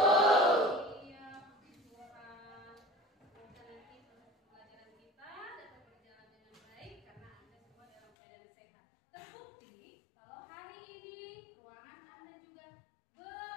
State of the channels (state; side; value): drops out; right; at 8.1 s